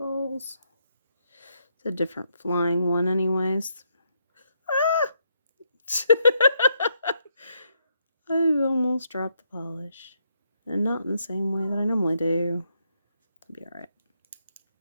It's a different flying one anyways. Ah! I almost dropped the polish. and not in the same way that I normally do. It'll be alright.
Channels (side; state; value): both; inverted; correlation -0.77